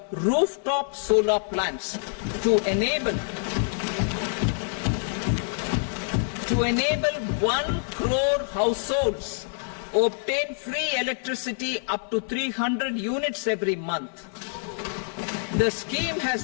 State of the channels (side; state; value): right; silent; 61 dB below the other